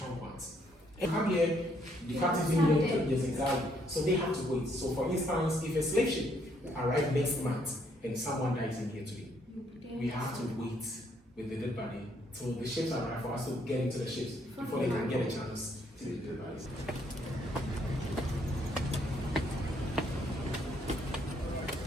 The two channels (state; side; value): normal; both; correlation 0.70